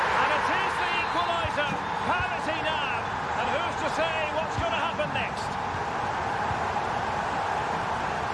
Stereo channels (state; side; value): identical; both; correlation 1.00